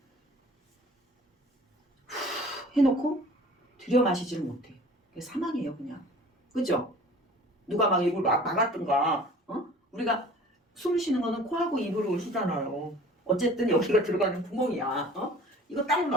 해놓고 들여 마시지를 못해. 그게 사망이에요, 그냥. 그죠? 누가 막 입을 막았든가, 우리가 숨 쉬는 거는 코하고 입으로 쉬잖아요. 어쨌든 여기가 들어가는 구멍이야. 이거 딱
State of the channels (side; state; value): both; normal; correlation 0.46